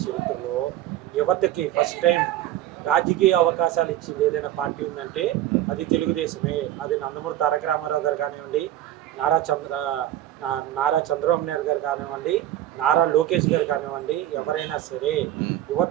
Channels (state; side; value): quieter; left; 13.0 dB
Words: చరిత్రలో యువతకి ఫస్ట్ టైం రాజకీయ అవకాశాలు ఇచ్చింది ఏదైనా పార్టీ ఉందంటే అది తెలుగుదేశమే. అది నందమూరి తారక రామారావు గారు కానివ్వండి, నారా చంద్ర నారా చంద్రబాబు నాయుడు గారు కానివ్వండి, నారా లోకేష్ గారు కానివ్వండి, ఎవరైనా సరే